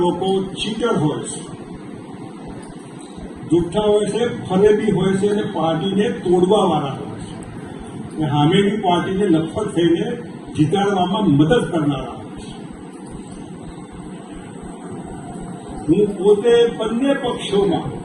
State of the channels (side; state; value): both; identical; correlation 1.00